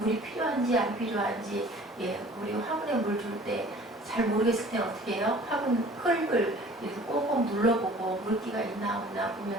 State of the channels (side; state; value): both; normal; correlation 0.49